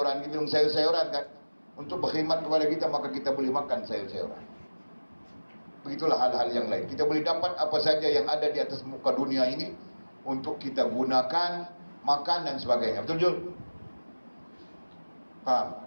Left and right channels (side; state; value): both; inverted; correlation -1.00